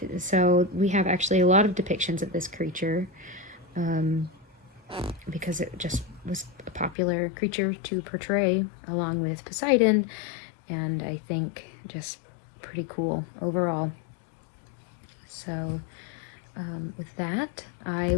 So we have actually a lot of depictions of this creature because it just was a popular creature to portray along with Poseidon, and I think just pretty cool overall. So with that, I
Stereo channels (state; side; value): drops out; right; at 7.0 s